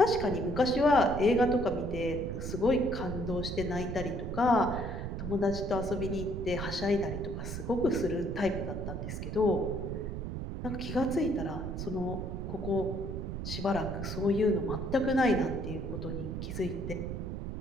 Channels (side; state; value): right; noise; rumble, 5 dB below the sound